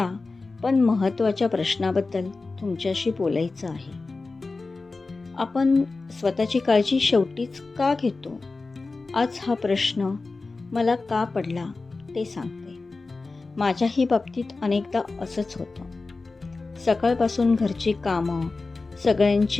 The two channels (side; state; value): right; quieter; 3.7 dB